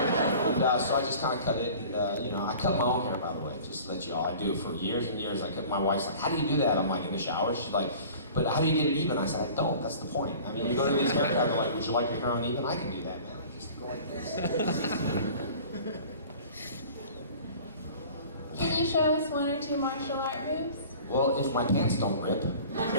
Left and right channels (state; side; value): inverted; both; correlation -0.44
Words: And so I just kind of cut it, and I cut my own hair, by the way, just to let you all. I do for years and years. My wife's like, how do you do that? I'm like, in the shower. She's like, but how do you get it even? I said, I don't. That's the point. I mean, you go to these haircuts, they're like, would you like your hair uneven? I can do that, man. I just go like this. Can you show us one or two martial art moves? Well, if my pants don't rip, then